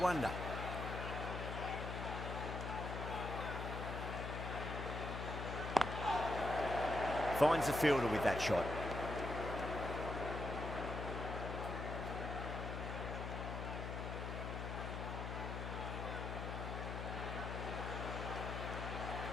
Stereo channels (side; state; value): left; noise; hum, 4 dB below the sound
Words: Finds the fielder with that shot.